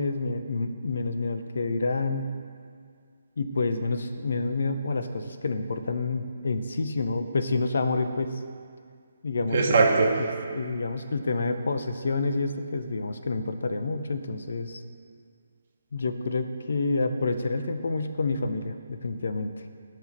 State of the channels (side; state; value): both; inverted; correlation -0.80